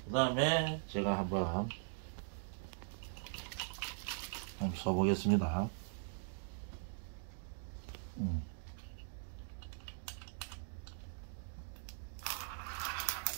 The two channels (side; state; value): left; silent; digital silence